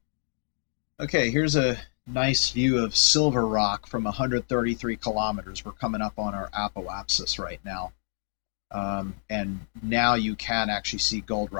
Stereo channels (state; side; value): silent; right; digital silence